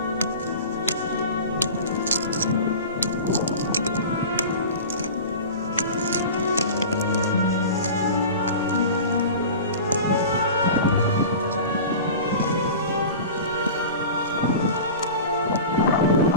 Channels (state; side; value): inverted; both; correlation -0.34